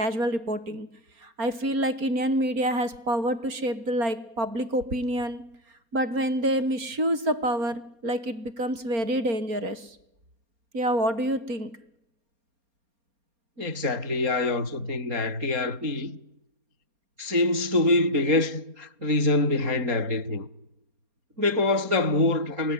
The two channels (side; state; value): left; late; 4.3 ms